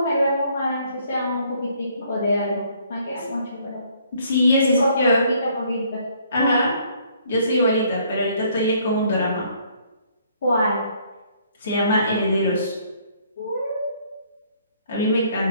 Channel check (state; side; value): inverted; both; correlation -0.64